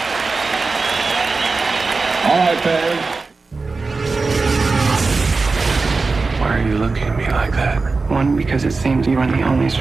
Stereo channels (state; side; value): quieter; left; 4.0 dB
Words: All right, Barry. Why are you looking at me like that? 1, because it seems you are the only